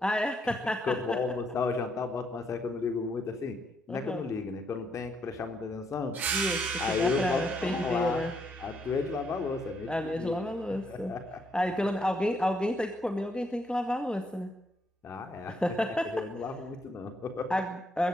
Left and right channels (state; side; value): normal; both; correlation 0.74